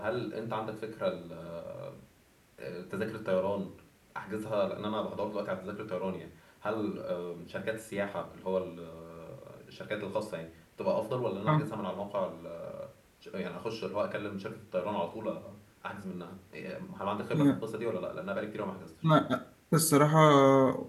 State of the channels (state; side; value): identical; both; correlation 1.00